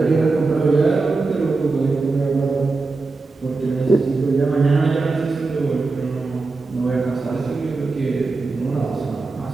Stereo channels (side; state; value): left; quieter; 3.8 dB